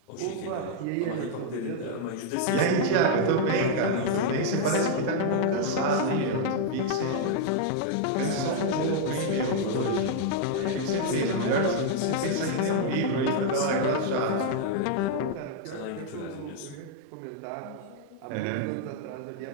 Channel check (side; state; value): both; different; correlation -0.01